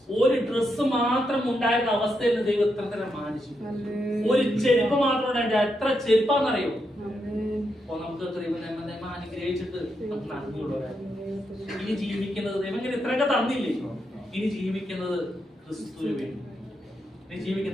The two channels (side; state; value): both; normal; correlation 0.82